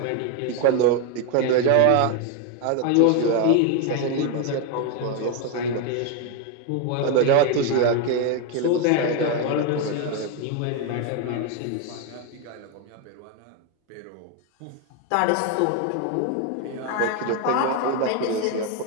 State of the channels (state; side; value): different; both; correlation 0.01